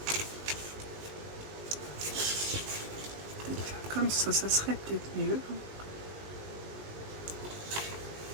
Peut-être faire comme ça serait peut-être mieux.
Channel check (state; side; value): late; left; 19 ms